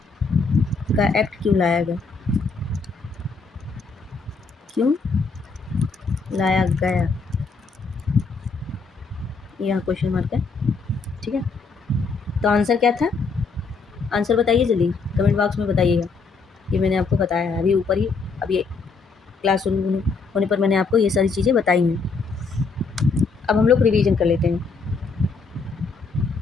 का एक्ट क्यों लाया गया? क्यों लाया गया? यहाँ क्वेश्चन मार्क है, ठीक है। तो आंसर क्या था? आंसर बताइए जल्दी, कमेंट बॉक्स में बताइएगा। ये मैंने आपको बताया है अभी ऊपर ही, अभी क्लास होने पर मैंने आपको ये सारी चीज़ें बताई हैं। अब हम लोग रिवीजन कर लेते हैं।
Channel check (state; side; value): quieter; right; 4.5 dB